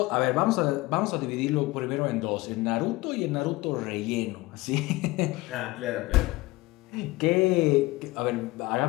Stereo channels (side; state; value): right; quieter; 20.8 dB